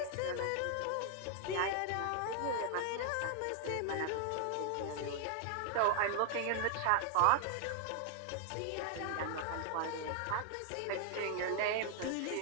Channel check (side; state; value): both; different; correlation 0.00